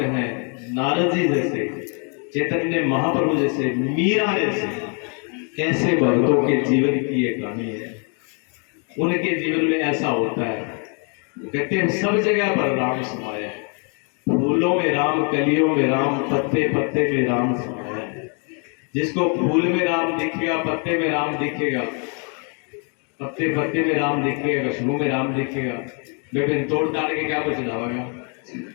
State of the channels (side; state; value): right; quieter; 38.2 dB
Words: हैं, नारद जी जैसे, चैतन्य महाप्रभु जैसे, मीरा जैसे, कैसे भक्तों के जीवन की ये कहानी है। उनके जीवन में ऐसा होता है, कहते हैं सब जगह पर राम समाया है। फूलों में राम, कलियों में राम, पत्ते पत्ते में राम समाया है। जिसको फूल में राम दिखेगा, पत्ते में राम दिखेगा, पत्ते पत्ते में राम दिखेगा, खुशबू में राम दिखेगा, लेकिन तोड़ ताड़ के क्या कुछ चढ़ावेगा?